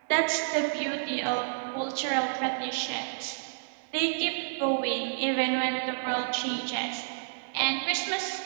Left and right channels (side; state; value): left; silent; digital silence